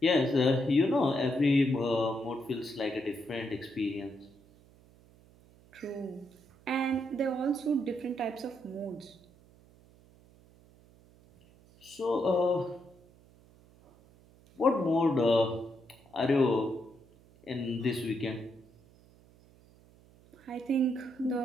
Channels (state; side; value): noise; right; hum, 27 dB below the sound